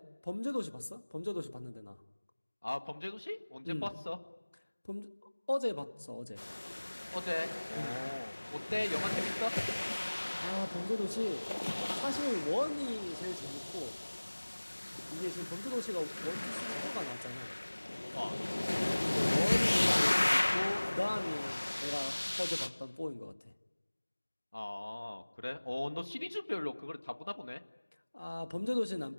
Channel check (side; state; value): both; inverted; correlation -1.00